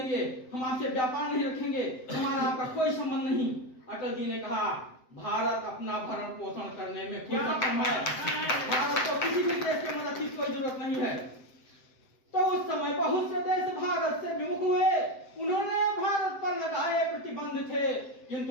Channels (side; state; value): right; late; 7.8 ms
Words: हम आपसे व्यापार नहीं रखेंगे, हमारा आपका कोई संबंध नहीं। अटल जी ने कहा भारत अपना भरण पोषण करने में खुद सक्षम है, भारत को किसी भी देश की मदद की कोई जरूरत नहीं है। तो उस समय बहुत से देश भारत से विमुख हुए, उन्होंने भारत पर लगाए प्रतिबंध थे,